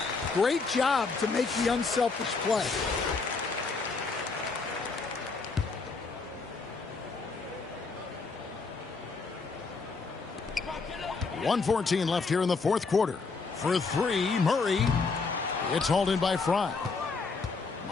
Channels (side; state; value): right; quieter; 4.4 dB